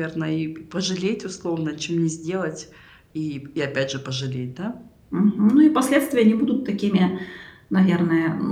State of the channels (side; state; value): both; identical; correlation 1.00